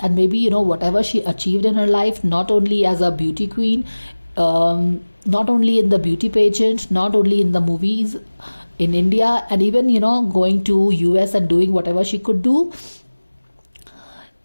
maybe whatever she achieved in her life, not only as a beauty queen, not only in the beauty pageant, not only in the movies in India, and even going to US and doing whatever she could do,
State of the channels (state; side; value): inverted; both; correlation -1.00